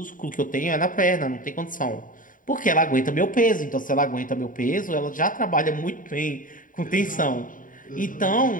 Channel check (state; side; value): late; right; 0.39 ms